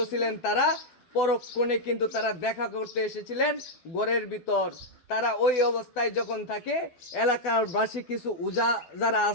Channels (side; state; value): right; late; 12 ms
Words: ছিলেন তারা, পরক্ষণে কিন্তু তারা দেখা করতে এসেছিলেন ঘরের ভিতর। তারা ওই অবস্থায় যখন থাকে, এলাকাবাসী কিছু উজা যারা